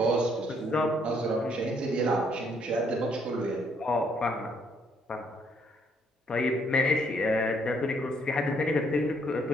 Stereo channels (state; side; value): normal; both; correlation 0.69